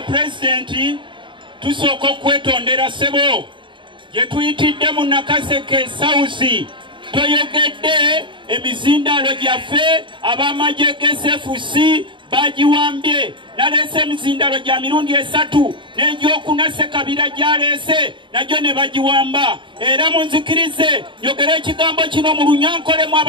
tusoko kwetondera sebo yetuyitidde mu Nakaseke South toyogedde emizindalo gyaffe abamaje GSFC bagiwambye nalese emizindalo gya mirundi 3 n'egyokuna Ssekabira gyalese nagyo ne bagiwamba era munzikirize yogera ekigambo kino mu Lunyankole mu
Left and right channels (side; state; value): left; late; 0.24 ms